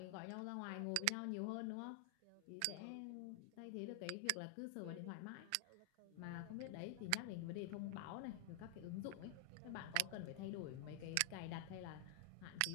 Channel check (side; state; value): both; different; correlation 0.00